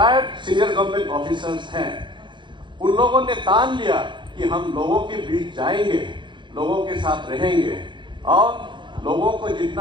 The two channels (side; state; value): left; late; 0.23 ms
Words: सीनियर गवर्नमेंट ऑफिसर्स हैं, उन लोगों ने ठान लिया कि हम लोगों के बीच जाएंगे, लोगों के साथ रहेंगे और लोगों को